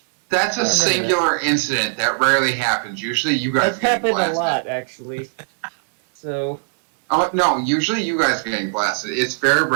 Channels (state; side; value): silent; left; digital silence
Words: That's a singular incident that rarely happens. Usually, you guys That's get happened blasted. a lot, actually. So. Oh no! Usually, you guys are getting blasted. It's very